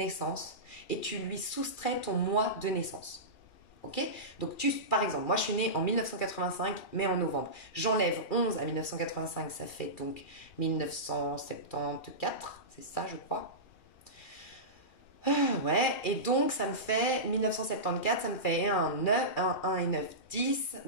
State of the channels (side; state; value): right; late; 2.4 ms